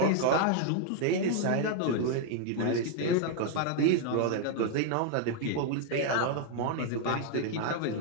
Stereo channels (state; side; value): different; both; correlation 0.00